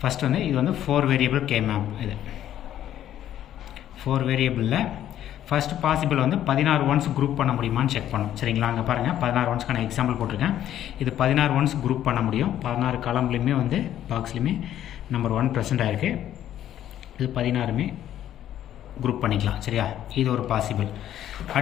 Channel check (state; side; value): quieter; right; 11.5 dB